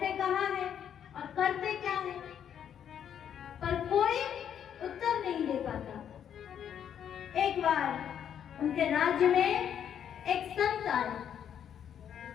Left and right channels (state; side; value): quieter; right; 9.0 dB